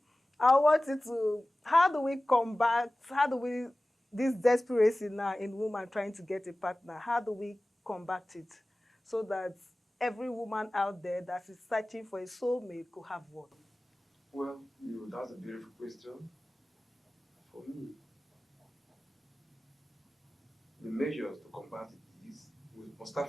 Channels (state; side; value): normal; both; correlation 0.97